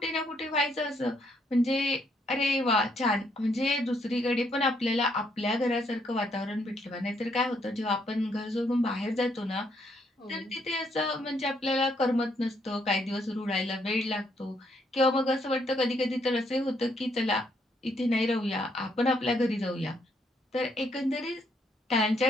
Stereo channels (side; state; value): both; normal; correlation 0.72